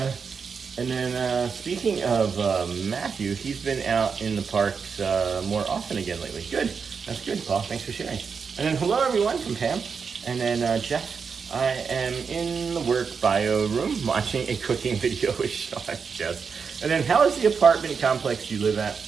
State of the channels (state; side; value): quieter; left; 5.8 dB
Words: then speaking of Matthew, he's been out in the parks more often again lately. Good. That's good, Paul. Thanks for sharing. And then hello, everyone, from Pam. And then Jeff, I am in the work bio room watching a cooking video with Sean. Jeff. And then how is the apartment complex you live at?